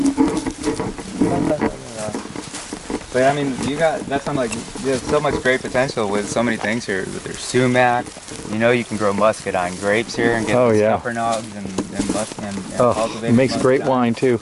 But I mean, that's I'm like, you have so much great potential with so many things here. There's sumac, you know, you can grow muscadine grapes here and get scuppernogs and cultivate. It makes great muscadine. wine too.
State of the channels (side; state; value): both; identical; correlation 1.00